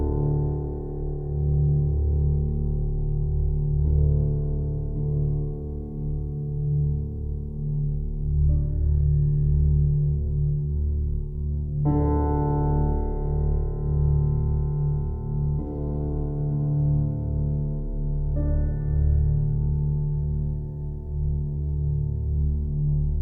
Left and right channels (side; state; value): both; identical; correlation 1.00